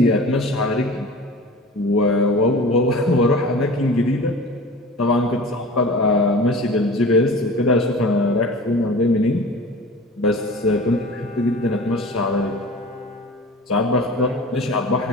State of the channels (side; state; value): both; normal; correlation 0.38